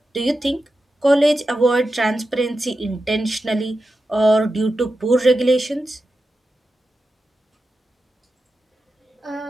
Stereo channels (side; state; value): both; normal; correlation 0.91